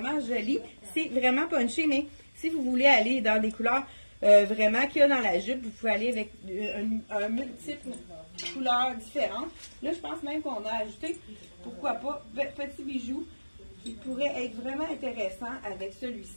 joli. C'est vraiment punché, mais si vous voulez aller dans des couleurs vraiment qu'il y a dans la jupe, vous pouvez aller avec un multiple couleurs différentes. Là, je pense même qu'on a ajouté, pourquoi pas, petits bijoux qui pourraient être vraiment intéressants avec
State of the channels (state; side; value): inverted; both; correlation -1.00